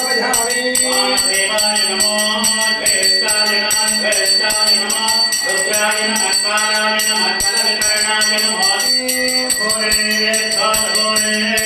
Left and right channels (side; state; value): both; identical; correlation 1.00